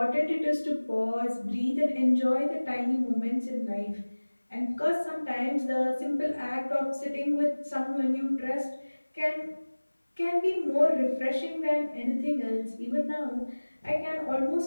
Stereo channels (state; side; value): inverted; both; correlation -1.00